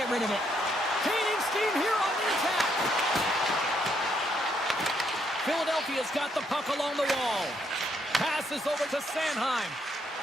rid of it. Gaining steam here on the attack. Philadelphia's got the puck along the wall. Passes over to Sanheim.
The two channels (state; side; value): normal; both; correlation 0.74